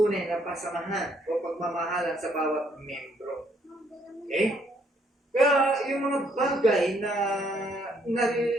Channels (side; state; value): both; normal; correlation 0.69